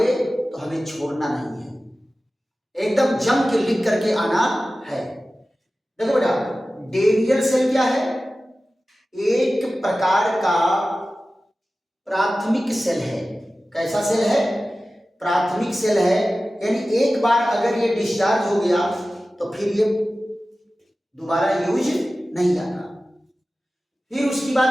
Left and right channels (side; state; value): both; normal; correlation 0.95